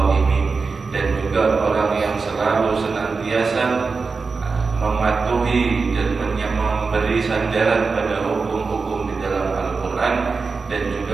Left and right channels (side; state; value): left; quieter; 4.5 dB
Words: dan juga orang yang selalu senantiasa mematuhi dan memberi sandaran pada hukum-hukum di dalam Al-Quran dan